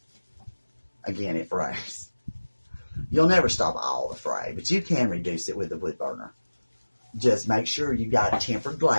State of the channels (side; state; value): both; inverted; correlation -1.00